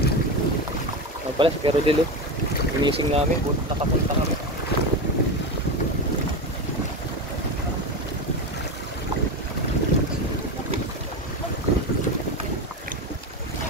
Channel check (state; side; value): normal; both; correlation 0.19